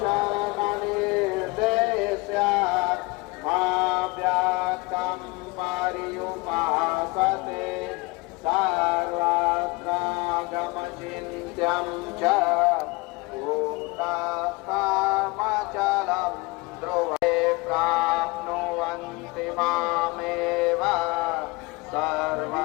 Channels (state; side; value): quieter; right; 24.8 dB